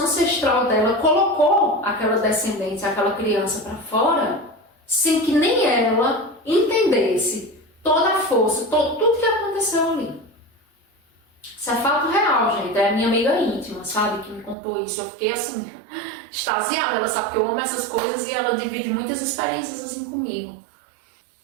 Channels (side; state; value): left; drops out; at 14.6 s